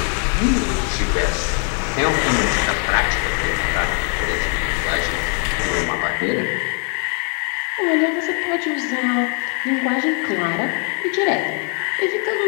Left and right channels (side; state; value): right; quieter; 33.6 dB